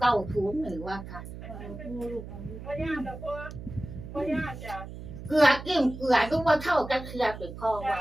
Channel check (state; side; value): noise; right; hum, 11 dB below the sound